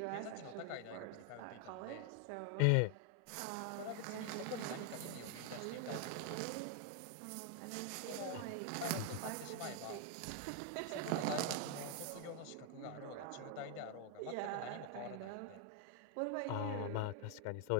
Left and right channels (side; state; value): both; different; correlation 0.00